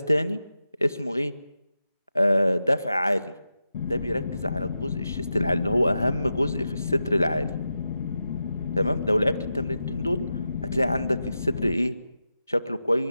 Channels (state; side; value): inverted; both; correlation -0.90